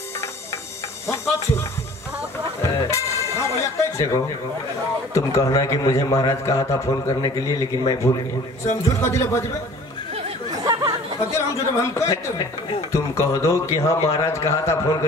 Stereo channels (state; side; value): normal; both; correlation 0.48